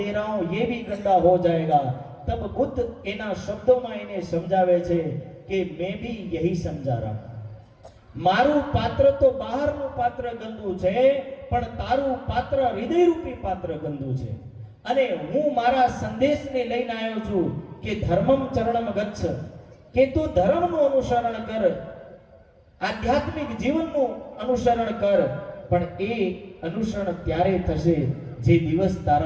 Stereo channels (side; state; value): both; identical; correlation 1.00